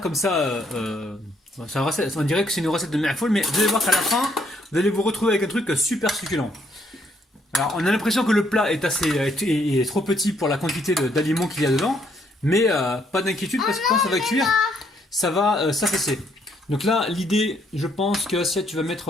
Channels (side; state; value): both; normal; correlation 0.70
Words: comme ça. C'est une recette, on dirait que c'est une recette de Mafoul, mais vous allez voir qu'à la fin, vous allez vous retrouver avec un truc super succulent. Alors, on a l'impression que le plat est trop petit pour la quantité d'aliments qu'il y a dedans, mais pas d'inquiétude parce que quand ça va cuire, ça va s'affaisser. Donc là, l'idée, je pense que Assia, tu vas